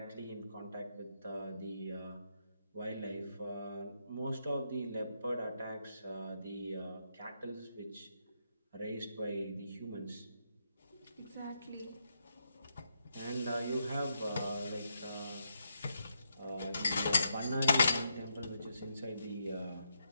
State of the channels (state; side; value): inverted; both; correlation -0.80